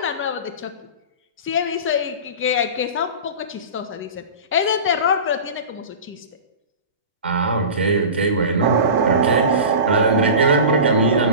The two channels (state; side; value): inverted; both; correlation -0.32